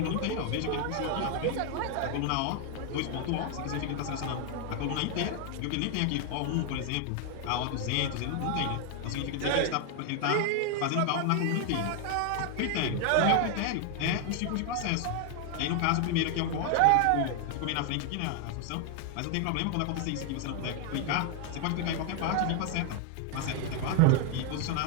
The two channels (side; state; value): both; different; correlation 0.00